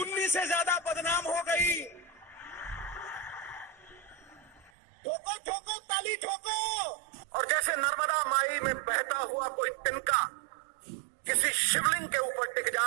से ज्यादा बदनाम हो गई। ठोको ठोको ताली ठोको। और जैसे नर्मदा माई में बहता हुआ कोई तिनका किसी शिवलिंग के ऊपर टिक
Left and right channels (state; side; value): drops out; left; at 4.7 s